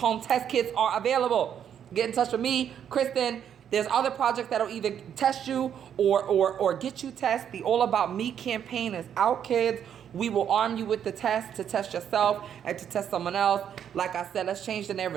test kits are available. Get in touch with me, Kristen. There's other projects that'll either test you or get you tested. The All About Me campaign is out, kids. We will arm you with the test to test yourself and to test someone else. Like I said, let's change the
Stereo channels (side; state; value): left; quieter; 8.9 dB